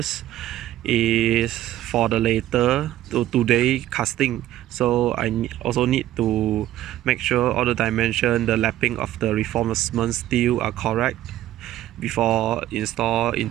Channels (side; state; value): left; quieter; 13.6 dB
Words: is for the later today casting. So I also need to make sure all the dimension, the lapping of the reinforcement steel are correct before install